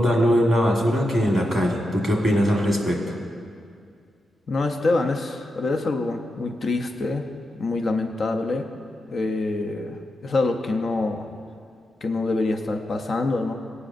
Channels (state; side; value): normal; both; correlation 0.87